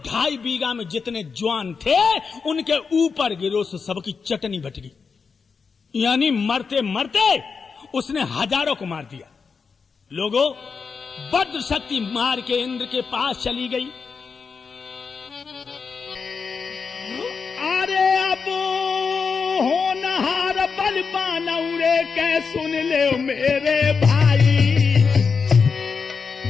बीघा में जितने जवान थे उनके ऊपर गिरो से सबकी चटनी बट गई। यानी मरते मरते उसने हजारों को मार दिया। लोगों, वज्र शक्ति मार के इंद्र के पास चली गई। अरे अब होनहार बलवान उड़े के सुन ले मेरे भाई,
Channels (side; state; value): right; quieter; 5.4 dB